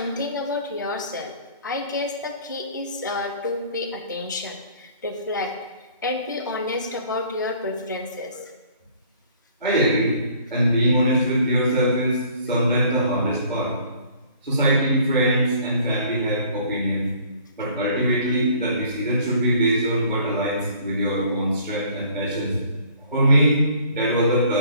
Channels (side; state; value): both; inverted; correlation -0.55